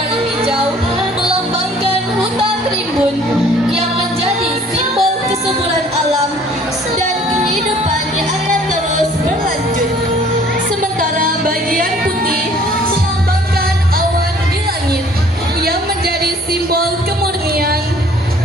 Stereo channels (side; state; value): both; normal; correlation 0.55